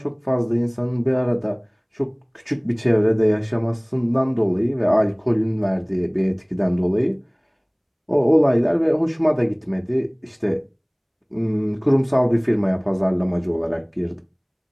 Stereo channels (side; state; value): both; identical; correlation 1.00